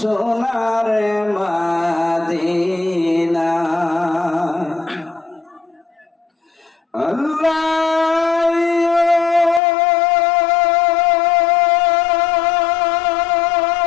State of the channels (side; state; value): right; drops out; at 9.6 s